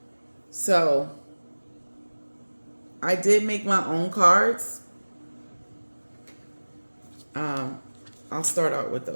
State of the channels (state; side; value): inverted; both; correlation -1.00